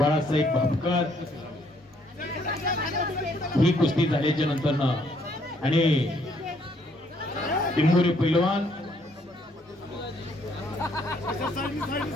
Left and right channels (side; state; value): both; normal; correlation 0.67